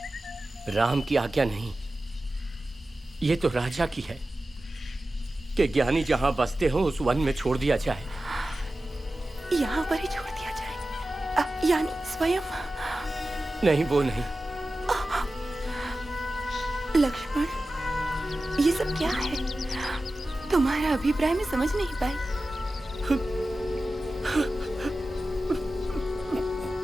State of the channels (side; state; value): both; normal; correlation 0.94